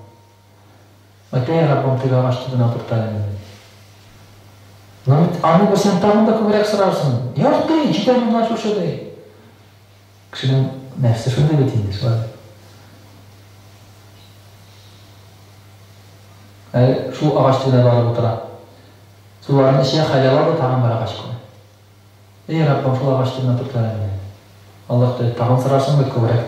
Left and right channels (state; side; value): identical; both; correlation 1.00